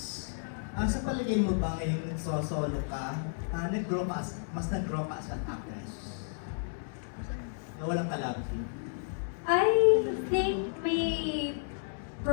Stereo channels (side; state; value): right; silent; digital silence